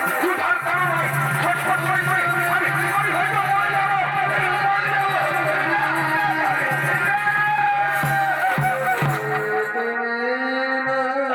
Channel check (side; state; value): both; identical; correlation 1.00